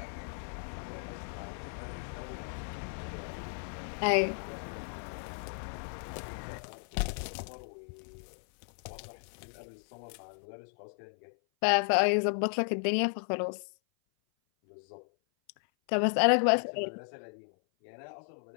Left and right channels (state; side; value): silent; right; 55 dB below the other